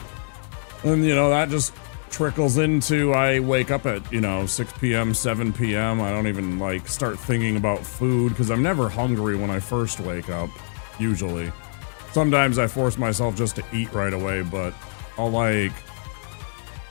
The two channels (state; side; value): silent; right; digital silence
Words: And, you know, that just trickles into I wake up at, you know, 6 p.m., 7 p.m. I don't even, like, start thinking about food because I'm never hungry when I first wake up, usually. Sometimes I force myself just to eat right away, but I'll, like...